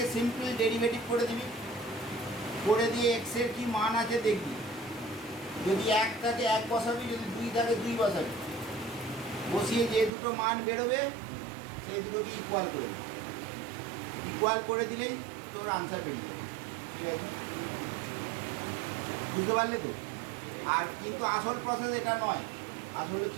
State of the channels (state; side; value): drops out; left; at 10.1 s